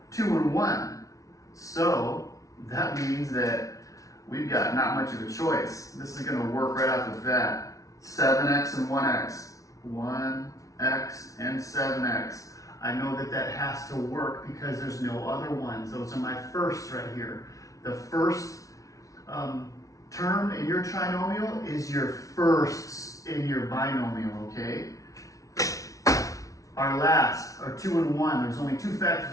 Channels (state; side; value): late; right; 0.17 ms